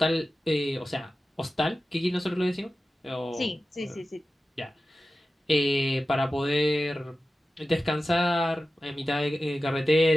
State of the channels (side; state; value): both; normal; correlation 0.94